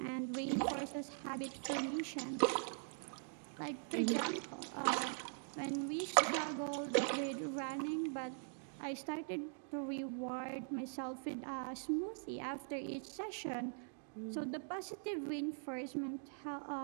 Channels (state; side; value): silent; left; digital silence